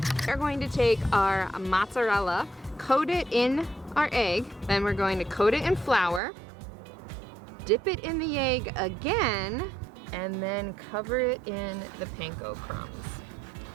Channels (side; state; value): left; drops out; at 6.2 s